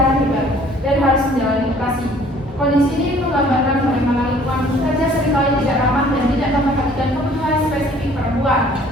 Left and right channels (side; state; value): both; normal; correlation 0.55